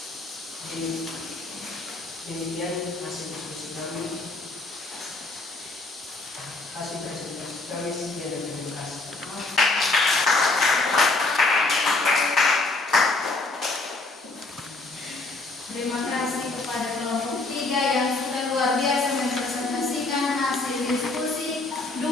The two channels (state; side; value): quieter; right; 3.2 dB